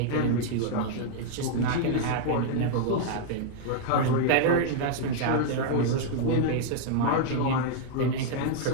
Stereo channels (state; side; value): different; both; correlation -0.01